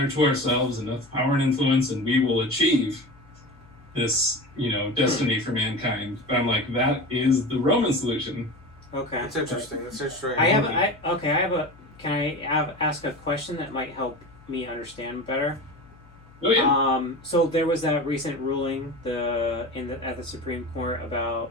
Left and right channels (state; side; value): noise; left; hum, 25 dB below the sound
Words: to ourselves enough power and influence, and we will achieve this, destiny for mankind. But I'm like, that is the Roman solution. Okay. That's interesting. That's interesting. Can I ask a question that might help me understand better? Oh yeah. So there was that recent ruling at the Supreme Court about